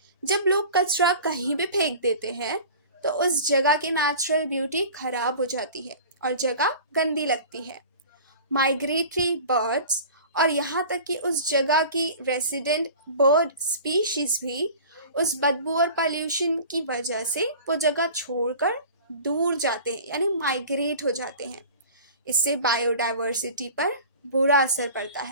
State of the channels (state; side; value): inverted; both; correlation -0.40